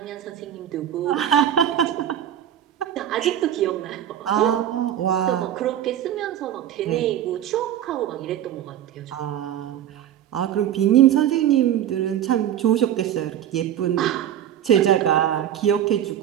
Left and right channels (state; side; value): quieter; left; 10.8 dB